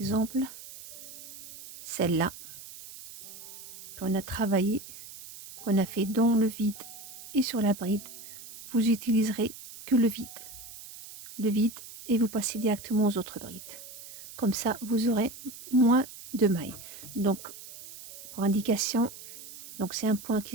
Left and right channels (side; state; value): right; noise; hiss, 15 dB below the sound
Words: celle-là, qu'on a travaillé, qu'on a fait dans le vide et sur la bride, vous utiliserez que le vide. Le vide et vous passez directement aux autres brides. Comme ça, vous aurez moins de mailles. Donc, pour indication, donc c'est un point